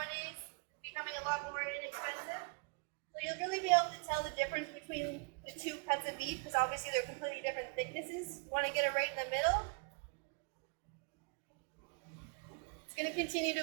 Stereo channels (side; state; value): left; quieter; 34.9 dB